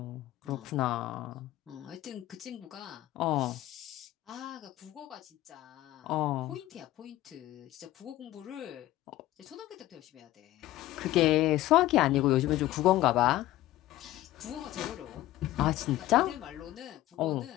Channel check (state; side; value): quieter; right; 15.5 dB